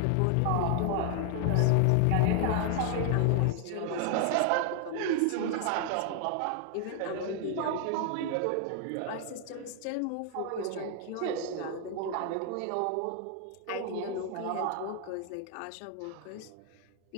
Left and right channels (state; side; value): different; both; correlation 0.00